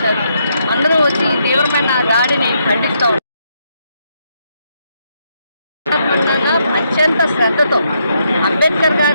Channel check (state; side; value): inverted; both; correlation -0.77